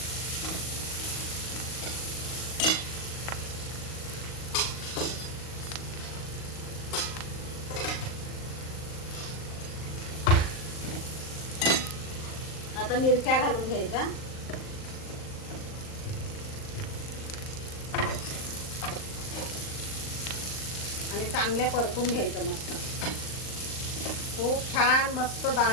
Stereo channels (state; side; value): late; right; 38 ms